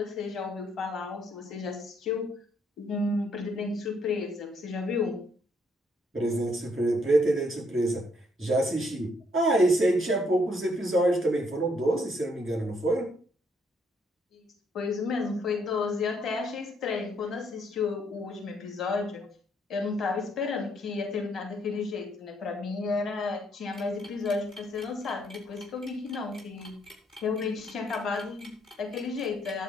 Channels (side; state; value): both; normal; correlation 0.70